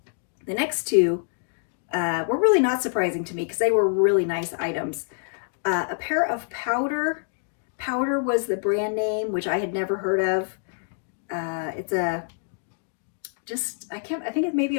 The next two were really not surprising to me because they were really nice items. A pair of Powder. Powder was the brand name, which I had never heard of. It's I think it's maybe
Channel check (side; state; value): right; silent; digital silence